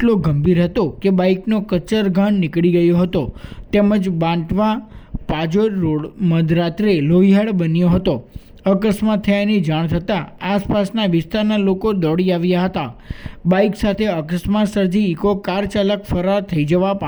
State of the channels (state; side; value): identical; both; correlation 1.00